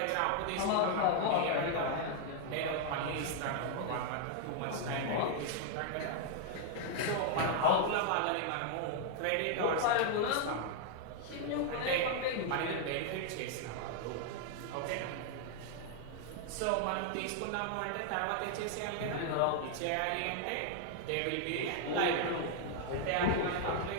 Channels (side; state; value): both; different; correlation 0.00